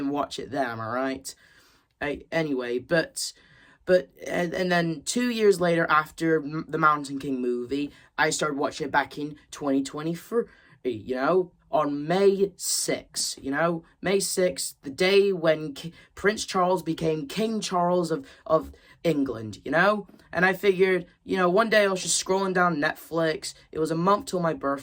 watch it then, am I right? Anyway, but then 2 years later, after the Mountain King movie, I started watching it back in 2023, you know, on May 6th, you know, May 6th, the day when Prince Charles became King Charles of England, you know, and I figured, you know, one day I was just scrolling down Netflix, it was a month till my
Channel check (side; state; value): both; identical; correlation 1.00